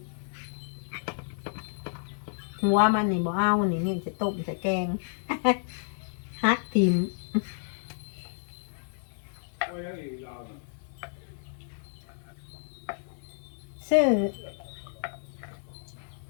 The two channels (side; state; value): right; silent; digital silence